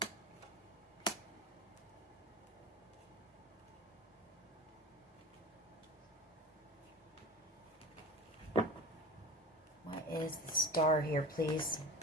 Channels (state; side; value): normal; both; correlation 0.31